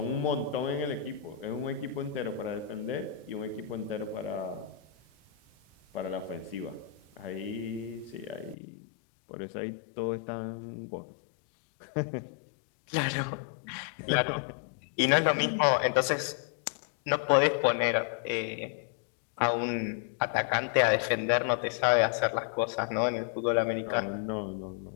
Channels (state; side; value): drops out; right; at 8.6 s